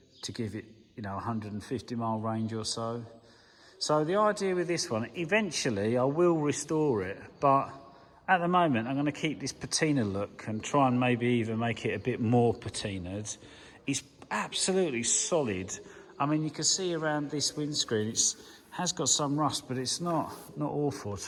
to give it, you know, 150 mile range or so. So the idea with this one, eventually I will restore it, but at the moment I'm going to keep this patina look and try and maybe even make it a bit more patinaed. It's absolutely solid. I mean, you can see around this windscreen, it has got some rust, but it's not awful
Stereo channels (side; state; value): both; identical; correlation 1.00